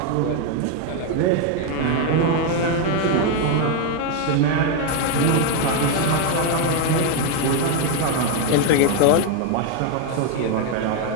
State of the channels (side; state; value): both; different; correlation 0.01